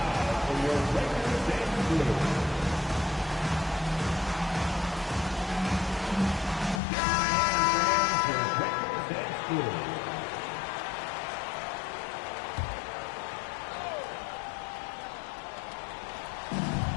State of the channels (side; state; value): right; drops out; at 6.8 s